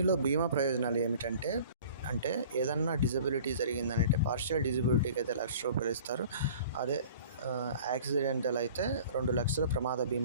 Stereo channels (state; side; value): inverted; both; correlation -0.46